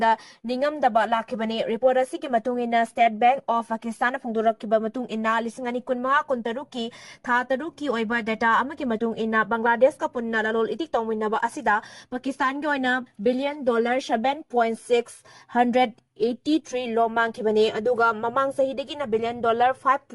ningam daba lakhibani report asi ki matung ina State Bank of Pakistan phongdorak kiba matung ina lisingani kunma kuntaruki tha taruki oiba data amaki matung ina Bangladesh ka punna lalol itik tongminaba asida Pakistan ki oina billion dollar 7.683 lo mangkhibani aduga mamang sahidagi na billion dollar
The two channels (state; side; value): identical; both; correlation 1.00